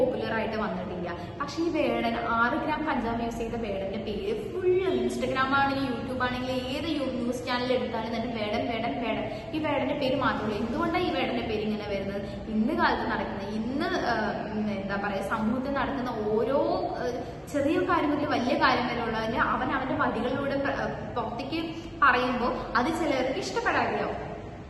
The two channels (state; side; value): identical; both; correlation 1.00